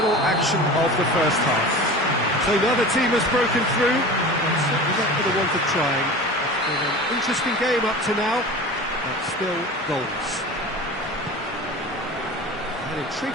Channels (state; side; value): normal; both; correlation 0.35